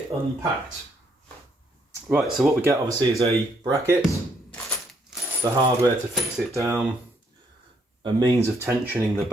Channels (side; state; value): both; normal; correlation 0.72